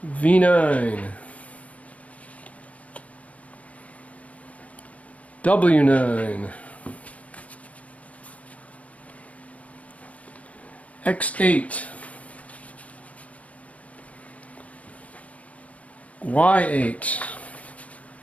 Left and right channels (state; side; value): late; right; 0.067 ms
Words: V9, W9, X8, Y8,